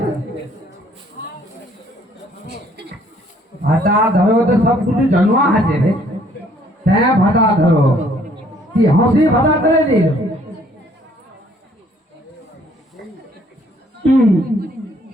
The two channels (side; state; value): both; normal; correlation 0.62